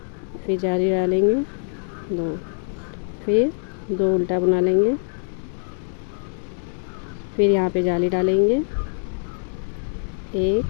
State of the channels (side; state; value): right; silent; digital silence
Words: फिर जाली डालेंगे, 2, फिर 2 उल्टा बना लेंगे, फिर यहाँ पे जाली डालेंगे,